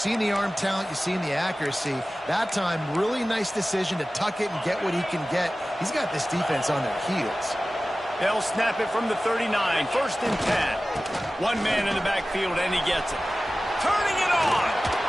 the arm talent, you've seen the accuracy. That time, really nice decision to tuck it and get what he can get. He's got this defense on their heels. They'll snap it from the 39, 1st and 10. One man in the backfield, and he gets it. Turning it on!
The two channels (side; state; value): both; normal; correlation 0.96